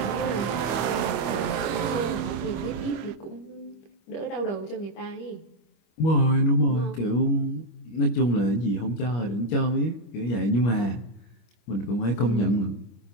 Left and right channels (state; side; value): late; right; 25 ms